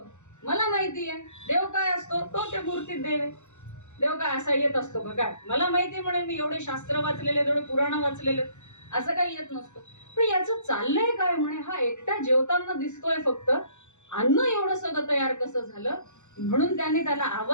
मला माहिती आहे देव काय असतो, तो त्या मूर्तीत देव आहे. देव काय असा येत असतो का? काय मला माहिती म्हणे, मी एवढे शास्त्र वाचलेले, एवढे पुराण वाचलेले, असं काही येत नसतं. पण याचं चाललंय काय म्हणे, हा एकटा जेवताना दिसतोय फक्त, अन्न एवढं सगळं तयार कसं झालं? म्हणून त्याने त्याला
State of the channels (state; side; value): late; right; 0.84 ms